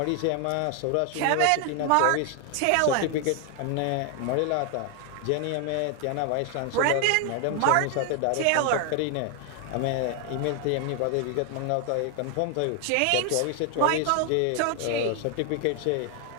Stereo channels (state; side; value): different; both; correlation 0.00